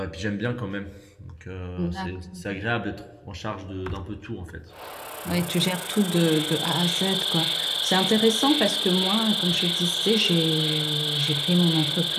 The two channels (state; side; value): identical; both; correlation 1.00